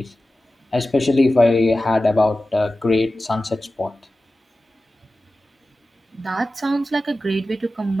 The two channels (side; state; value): both; normal; correlation 0.95